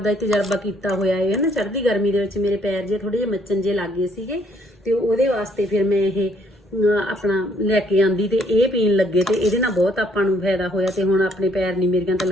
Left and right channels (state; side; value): normal; both; correlation 0.66